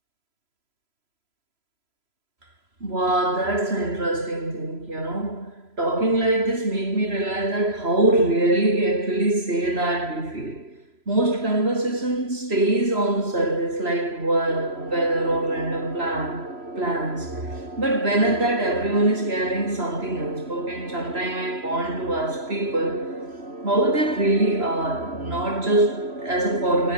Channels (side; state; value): left; late; 3.0 ms